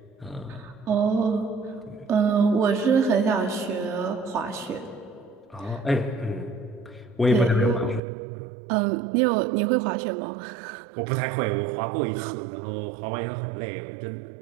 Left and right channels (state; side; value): drops out; left; at 8.0 s